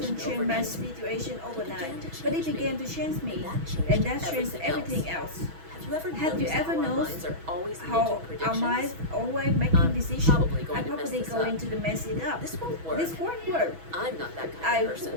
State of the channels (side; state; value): left; late; 6.1 ms